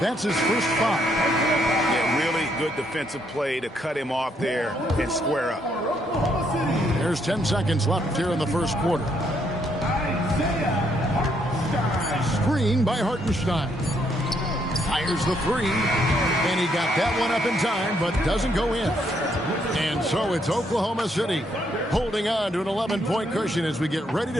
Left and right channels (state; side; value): normal; both; correlation 0.73